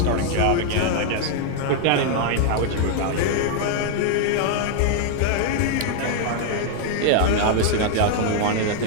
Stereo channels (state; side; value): different; both; correlation 0.00